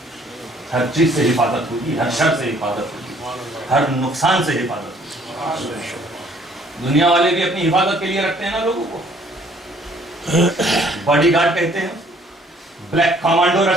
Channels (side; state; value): both; normal; correlation 0.60